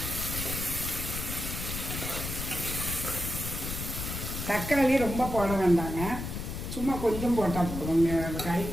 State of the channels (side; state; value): left; noise; rumble, 5 dB below the sound